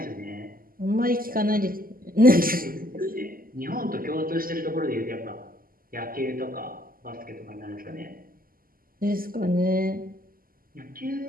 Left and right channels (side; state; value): left; late; 0.42 ms